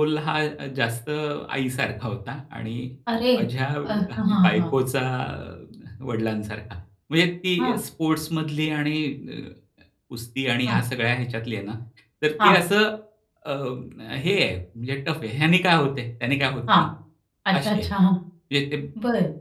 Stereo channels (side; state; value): both; identical; correlation 1.00